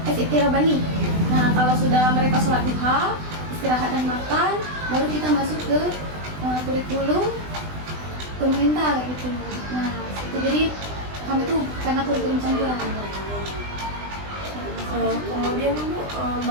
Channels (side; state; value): left; late; 20 ms